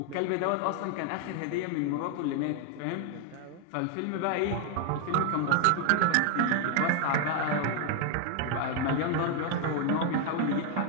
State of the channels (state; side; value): different; both; correlation 0.01